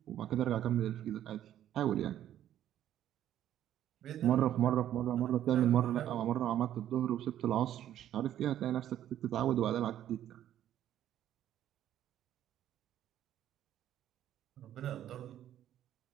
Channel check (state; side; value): quieter; left; 11.5 dB